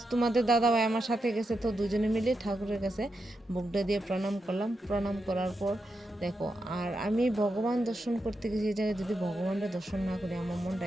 তোমাদের দাদা ভাই আমার সাথে গেছে, তো দুজনে মিলে ঠাকুরের কাছে বুকটা দিয়ে প্রণাম করলাম। প্রণাম করার পর দেখো, আর আমি ভগবান দর্শন করতে গেছি এই জায়গায়, যদি ভগবানটা দর্শন না করি আমার মনটা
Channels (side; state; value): both; normal; correlation 0.86